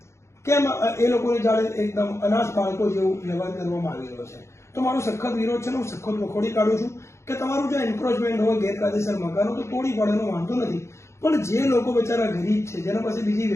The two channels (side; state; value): right; late; 0.13 ms